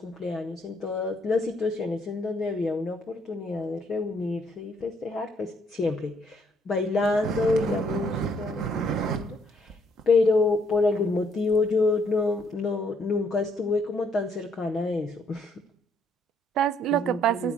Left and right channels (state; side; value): normal; both; correlation 0.69